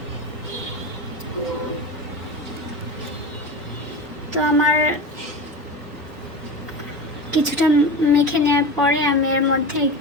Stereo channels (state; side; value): normal; both; correlation 0.27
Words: তো আমার কিছুটা মেখে নেওয়ার পরে আমি এর মধ্যে